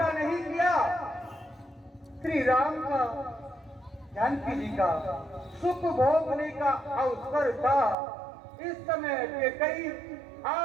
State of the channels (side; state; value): left; drops out; at 8.0 s